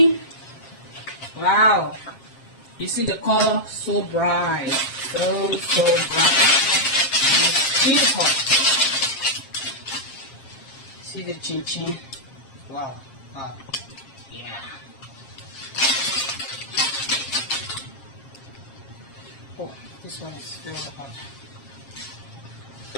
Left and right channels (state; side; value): late; right; 7.4 ms